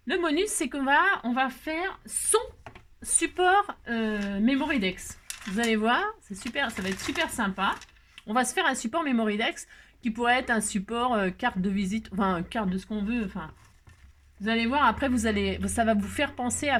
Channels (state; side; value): identical; both; correlation 1.00